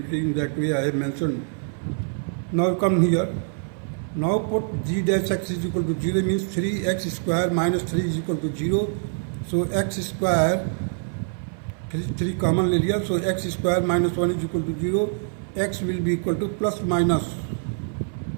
In that way I have mention. Now come here. Now put g dash x is equal to 0 means 3x square minus 3 is equal to 0. So x square 3 common ले लिया, so x square minus 1 is equal to 0. X will be equal to plus minus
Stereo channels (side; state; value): left; silent; 57 dB below the other